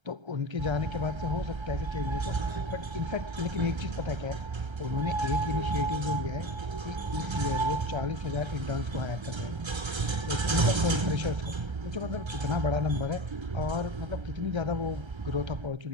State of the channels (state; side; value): late; left; 1.3 ms